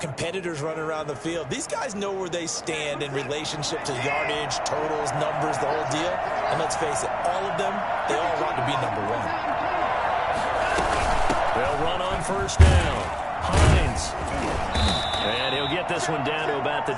running around the field. These guys know where they stand in relationship to yardage, totals, numbers, the whole deal. And let's face it, all of them, they all want to be number 1. They'll run on 1st down. Hines. And he'll get this one down to about the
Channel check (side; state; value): both; identical; correlation 1.00